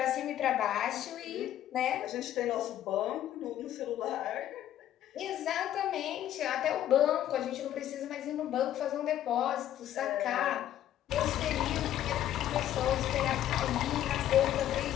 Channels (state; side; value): quieter; right; 11.9 dB